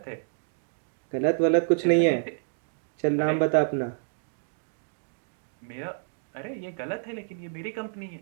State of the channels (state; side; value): silent; left; digital silence